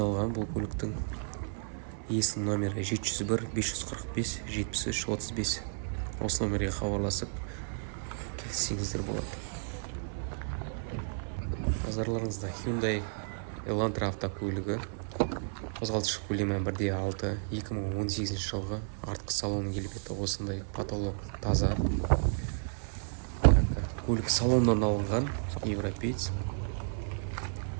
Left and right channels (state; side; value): silent; left; 56 dB below the other